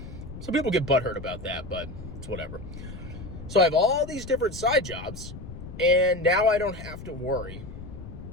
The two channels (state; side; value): noise; left; rumble, 12 dB below the sound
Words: Some people get butthurt about that, but it's whatever. So I have all these different side jobs, and now I don't have to worry